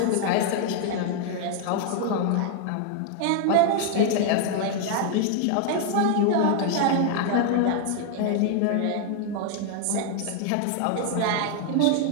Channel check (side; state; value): both; different; correlation 0.00